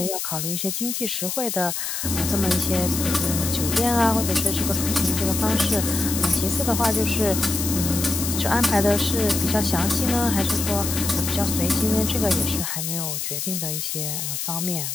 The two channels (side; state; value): left; noise; hiss, 3 dB below the sound